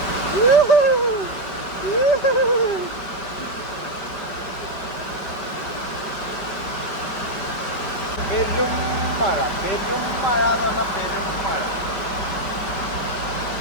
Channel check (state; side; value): late; right; 4.9 ms